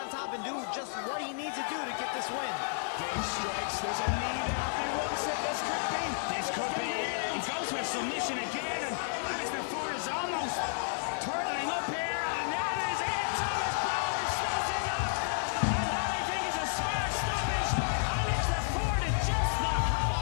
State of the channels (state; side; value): silent; right; digital silence